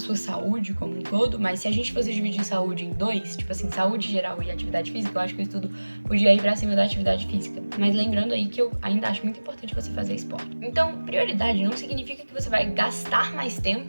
saúde como um todo, mas se a gente fosse dividir saúde em dois, tipo assim, saúde geral e atividade física, eu acho que o estudo podia ir para cima da atividade física. Mas lembrando aí que eu ainda acho muito importante você fazer esporte. Então, prioridade não significa que você vai gastar mais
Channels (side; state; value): both; inverted; correlation -1.00